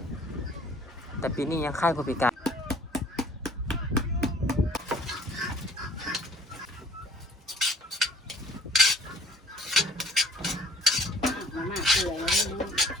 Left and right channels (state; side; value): normal; both; correlation 0.55